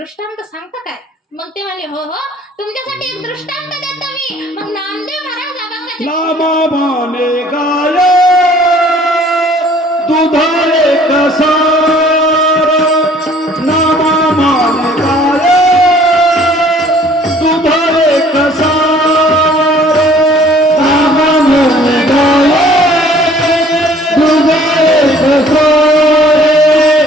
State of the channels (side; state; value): both; normal; correlation 0.55